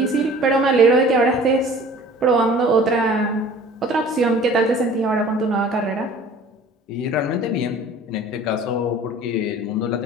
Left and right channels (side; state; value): both; normal; correlation 0.47